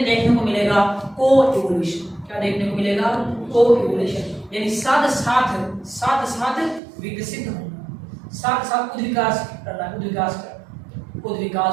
देखने को मिलेगा को इवोल्यूशन। क्या देखने को मिलेगा? को इवोल्यूशन, यानी साथ साथ विकसित होना, साथ साथ उद्विकास करना,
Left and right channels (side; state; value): left; drops out; at 6.8 s